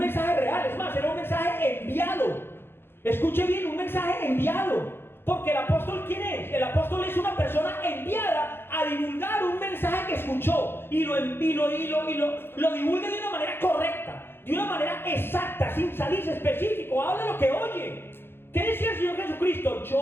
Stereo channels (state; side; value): late; right; 0.11 ms